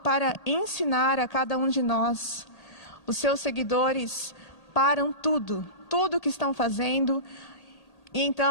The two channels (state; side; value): late; right; 1.8 ms